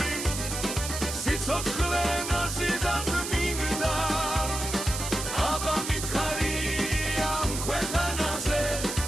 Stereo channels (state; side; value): noise; right; hiss, 5 dB below the sound